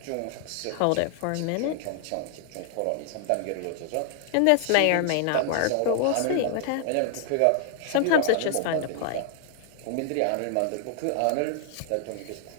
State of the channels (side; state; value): both; different; correlation 0.00